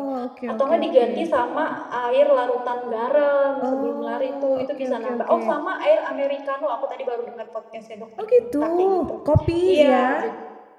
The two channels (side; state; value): both; identical; correlation 1.00